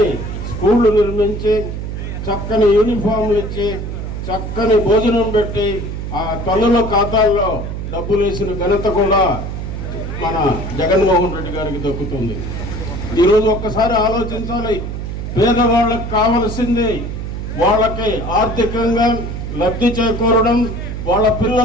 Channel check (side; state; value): right; noise; hum, 6 dB below the sound